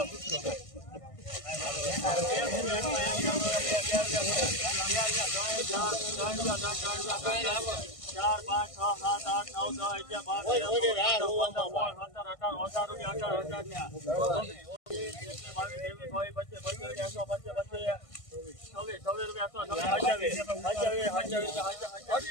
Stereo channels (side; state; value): right; late; 1.5 ms